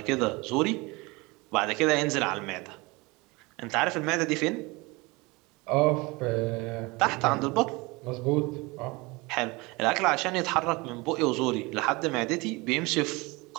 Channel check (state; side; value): quieter; left; 24.7 dB